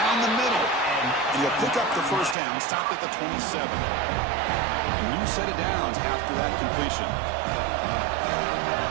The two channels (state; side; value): drops out; left; at 2.4 s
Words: the middle. And he'll pick up the first down, stopped at the 27. A new set of downs after that completion.